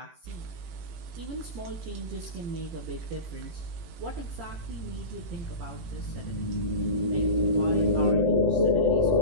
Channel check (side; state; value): left; late; 18 ms